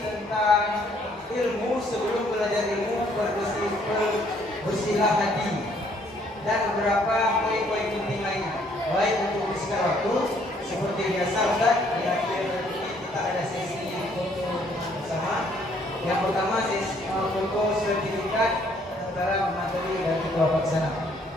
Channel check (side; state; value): both; normal; correlation 0.65